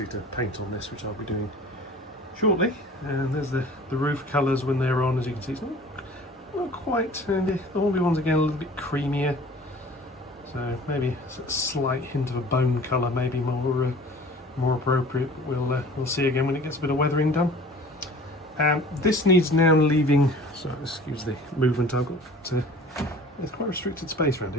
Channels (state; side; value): normal; both; correlation 0.46